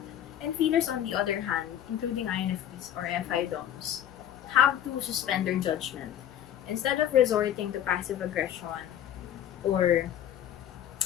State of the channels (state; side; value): quieter; right; 10.8 dB